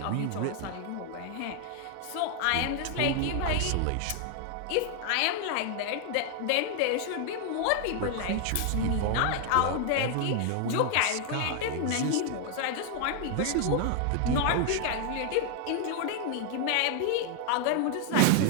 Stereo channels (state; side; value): different; both; correlation 0.00